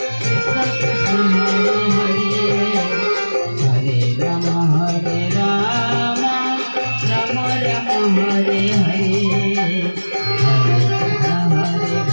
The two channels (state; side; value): inverted; both; correlation -1.00